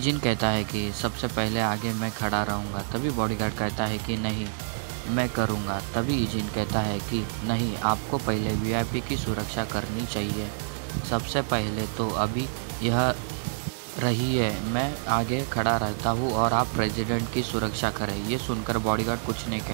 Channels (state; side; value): silent; left; digital silence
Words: कहता है कि सबसे पहले आगे मैं खड़ा रहूँगा। तभी बॉडीगार्ड कहता है कि नहीं, मैं करूँगा। तभी ईजिन कहता है कि नहीं, आपको पहले वीआईपी की सुरक्षा करनी चाहिए। सबसे पहले तो अभी यह रही है, मैं आगे खड़ा रहता हूँ और आप प्रेसिडेंट की सुरक्षा करें। ये सुनकर बॉडीगार्ड कुछ नहीं